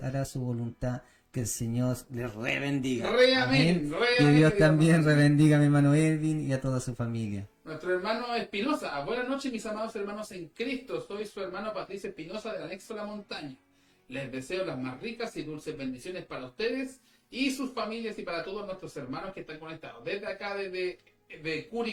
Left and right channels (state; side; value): identical; both; correlation 1.00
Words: su voluntad, que el Señor les rebendiga. Re amén, re Que amén, Dios querido también hermano. rebendiga a mi hermano Edwin y a toda su familia. Nuestro hermano Espinosa, buenas noches mis amados hermanos en Cristo, soy su hermano Patricia Espinosa del anexo La Montaña. Les deseo las más ricas y dulces bendiciones para ustedes y sus familias y para todos nuestros hermanos que están conectados. Desde acá, de